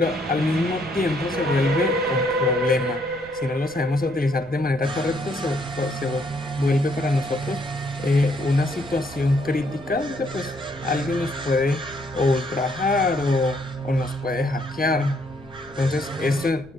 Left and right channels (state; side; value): noise; left; rumble, 24 dB below the sound